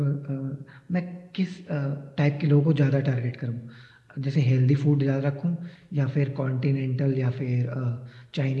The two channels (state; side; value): identical; both; correlation 1.00